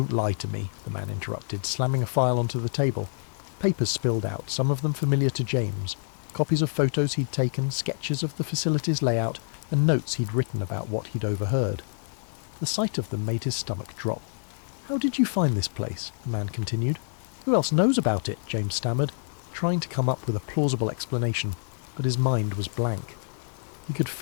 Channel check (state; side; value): silent; right; 60 dB below the other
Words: lie to me," the man interrupted, slamming a file onto the table. Papers spilled out, some of them familiar to James. Copies of photos he'd taken, sketches of the facility's layout, and notes he'd written about what he'd overheard. The sight of them made his stomach drop. "How did you find this place?" the man continued. "Who else knows about it?" James stammered, trying to come up with a plausible explanation, but his mind was blank. He could